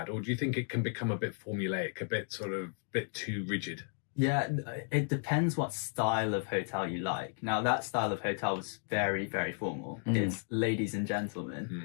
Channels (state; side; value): silent; right; 55 dB below the other